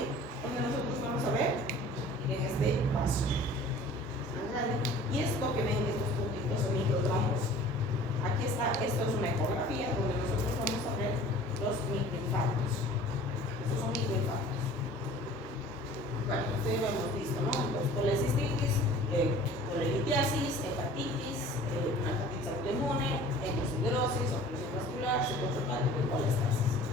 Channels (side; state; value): both; normal; correlation 0.46